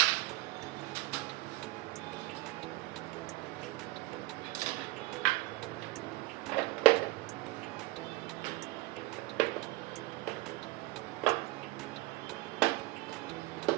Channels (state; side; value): quieter; left; 20.1 dB